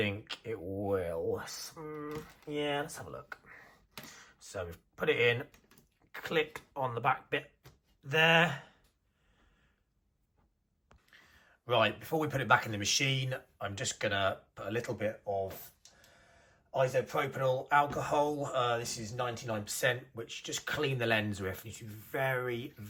it will. Yeah, let's have a look. So we've put it in, click on the back bit there. Right, before we put it back in the machine, I'm just gonna put a little bit of isopropyl alcohol. This is 99%, which just clean the lens with. You should be very,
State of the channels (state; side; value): identical; both; correlation 1.00